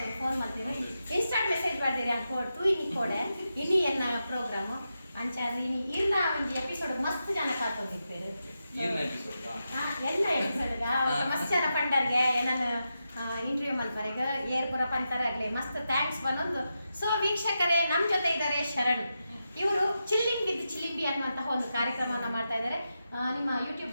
ಫೋನ್ ಮಾಡ್ತೀವಿ ಇನ್ಸ್ಟಾಂಟ್ ಮೆಸೇಜ್ ಮಾಡಿದ್ದೀರಿ ಹಂಗೆ ಕೊಡ್ತು ಇನಿ ಕೊಡೆ ಇನಿ ಎನ್ನ ಪ್ರೋಗ್ರಾಮು ಅಂಚಾದ್ರೆ ಇನಿ ಇರ್ನ ಒಂದು ಎಪಿಸೋಡ್ ಮಸ್ತ್ ಜನ ಕಾತಂದಿರ್ತಾರೆ ಎಲ್ಲ ಎಪಿಸೋಡ್ಗ ಮಸ್ತ್ ಜನ ಪಂಡರ್ಗೆ ಏನನ್ನು ಇಂಟರ್ವ್ಯೂ ಮಲ್ಪರೆಗ ಏರ್ಪುರ ಪಂತರಾಗಲಿ ಮಸ್ತ್ ಥ್ಯಾಂಕ್ಸ್ ಬಂದೊಂದು. ಸೊ ವೀಕ್ಷಕರೇ, ನಮ್ಮ ಜೊತೆ ಇದ್ದಾರೆ ಶರಣ್. ಇವರು ಚಿಲ್ಲಿಂಗ್ ವಿತ್ ಚಿಲಿಂಬಿ ಅನ್ನುವಂತಹ ಒಂದು ಕಾರ್ಯಕ್ರಮವನ್ನು ಮಾಡ್ತಾ ಇದ್ದಾರೆ. ನಿಮ್ಮ ಯೂಟ್ಯೂಬ್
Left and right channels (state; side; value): inverted; both; correlation -0.88